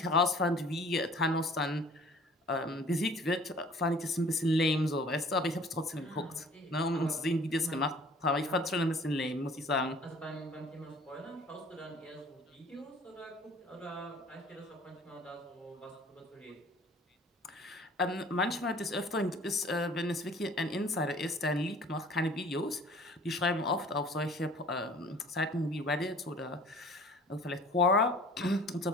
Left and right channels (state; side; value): normal; both; correlation 0.50